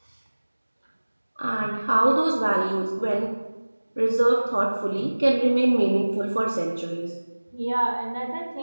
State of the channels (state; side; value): inverted; both; correlation -1.00